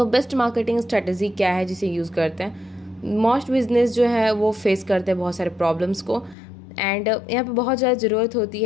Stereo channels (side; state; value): right; drops out; at 6.4 s